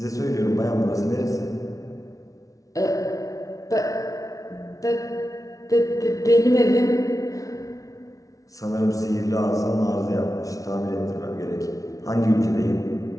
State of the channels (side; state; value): right; late; 0.17 ms